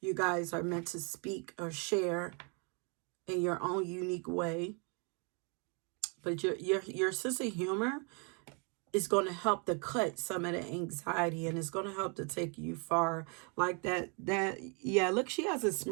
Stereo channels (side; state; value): left; quieter; 36.0 dB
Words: guys are meant to speak or share in your own unique way. But your sense of humor is going to help to cut some of the anxiety, and it's going to help to take you far. Like yeah, look, she has a